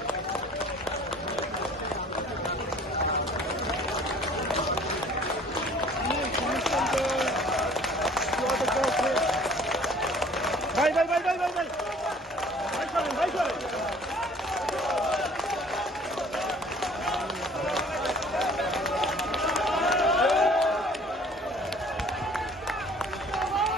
ভাই ভাই ভাই ভাই ভাই ভাই ভাই করেন ভাই করেন।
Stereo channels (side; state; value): both; normal; correlation 0.52